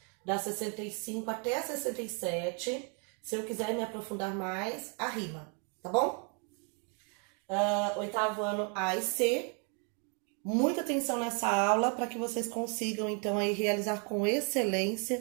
da 65 até a 67. Se eu quiser me aprofundar mais, a rima, tá bom? Oitavo ano A e C. Muita atenção nessa aula para que vocês consigam, então, aí realizar com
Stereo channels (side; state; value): left; quieter; 38.3 dB